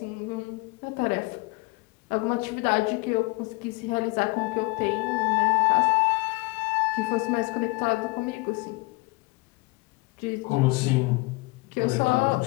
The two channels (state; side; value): quieter; right; 25.0 dB